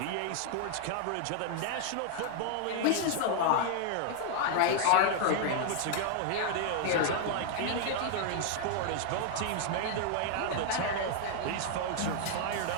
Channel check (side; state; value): both; different; correlation 0.00